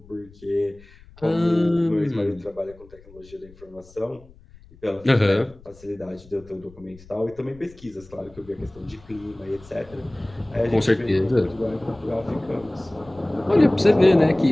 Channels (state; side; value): noise; left; rumble, 24 dB below the sound